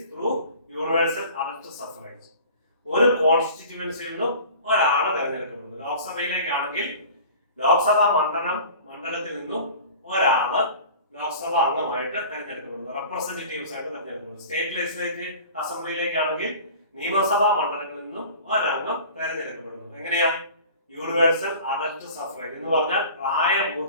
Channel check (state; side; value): inverted; both; correlation -0.42